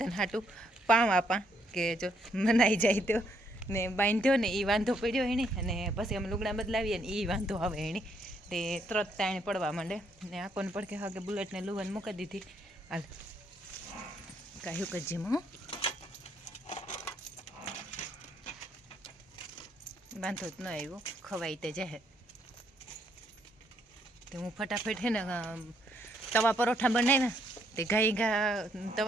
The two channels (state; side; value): normal; both; correlation 0.72